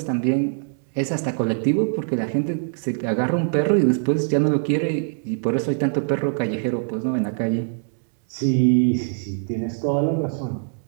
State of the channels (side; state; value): left; silent; digital silence